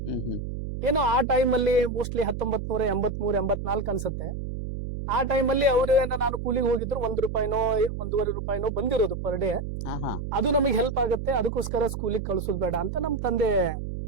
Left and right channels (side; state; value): right; noise; hum, 5 dB below the sound